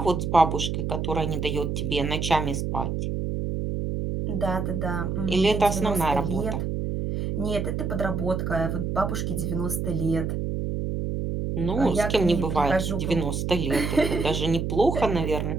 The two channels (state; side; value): noise; right; hum, 2 dB below the sound